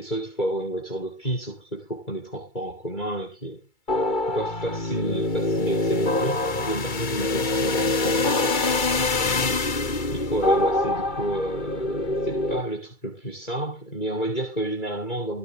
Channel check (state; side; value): late; right; 2.3 ms